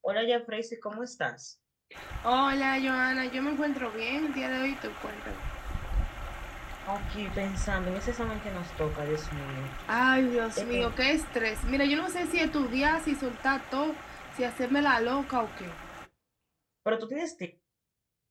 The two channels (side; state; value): both; identical; correlation 1.00